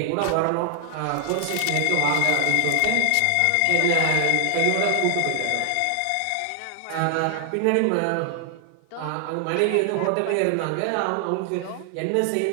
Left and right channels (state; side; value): different; both; correlation 0.00